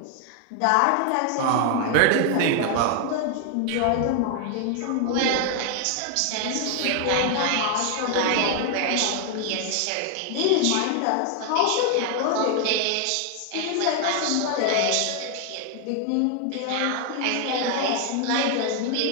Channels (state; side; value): different; both; correlation 0.00